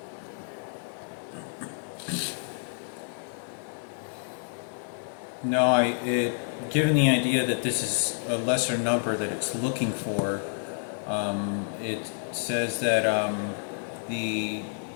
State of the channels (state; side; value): silent; right; digital silence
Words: No, given the idea that this is a lesser number that it's looking for, it says that the